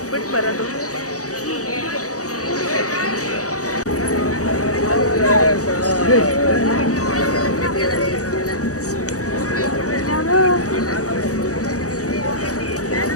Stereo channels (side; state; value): right; late; 0.66 ms